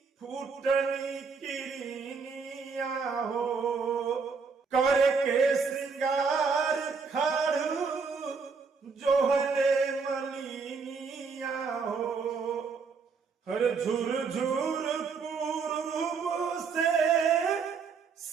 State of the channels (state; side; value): quieter; left; 5.2 dB